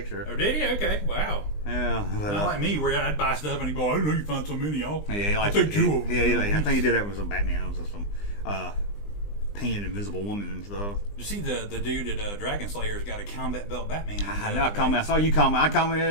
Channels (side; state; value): right; late; 20 ms